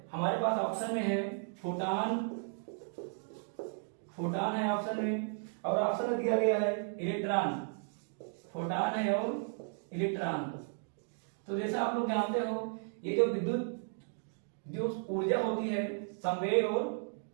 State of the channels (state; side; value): silent; left; 55 dB below the other